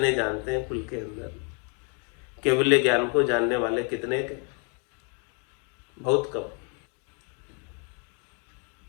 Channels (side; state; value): right; quieter; 38.5 dB